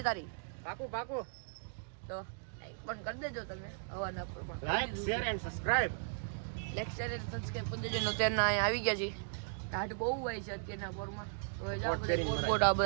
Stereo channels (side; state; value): left; silent; digital silence